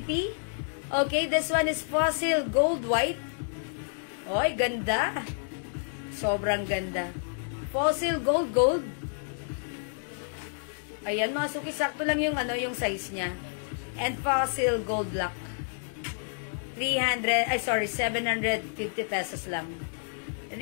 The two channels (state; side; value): silent; right; digital silence